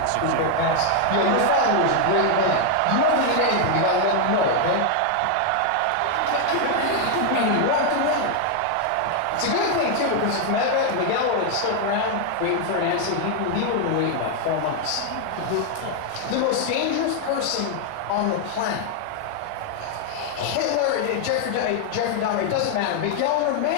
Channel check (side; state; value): both; different; correlation 0.00